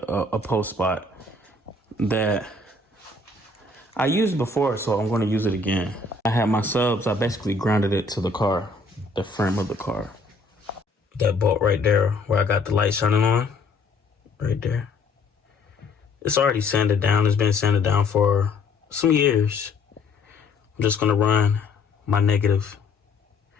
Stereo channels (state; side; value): quieter; right; 3.5 dB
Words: post spot that I used before, so I'm gonna use it again. I had my subs, I basically grounded it to the car, the frame of the car. That bolt right there where I got the light shining on, right there. It's already sanded down. It's been sanded down for some years. I'm just gonna run my negative